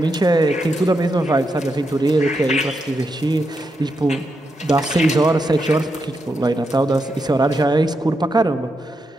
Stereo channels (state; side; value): normal; both; correlation 0.84